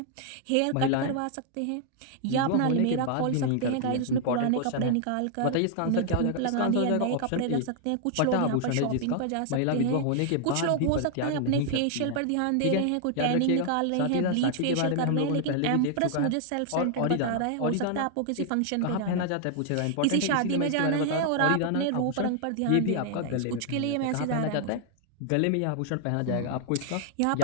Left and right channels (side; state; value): both; different; correlation 0.00